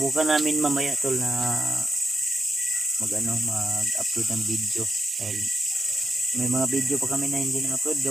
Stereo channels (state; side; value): normal; both; correlation 0.85